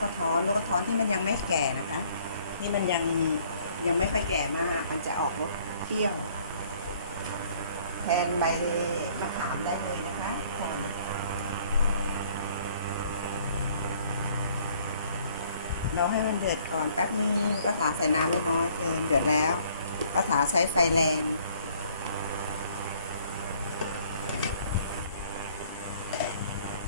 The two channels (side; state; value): both; inverted; correlation -0.60